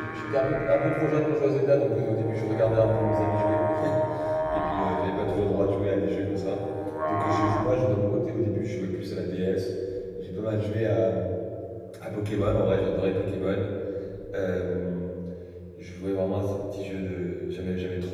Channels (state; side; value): identical; both; correlation 1.00